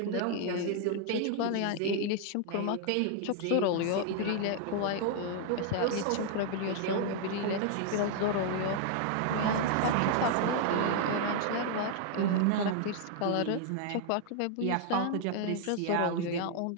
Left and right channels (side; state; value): both; different; correlation 0.00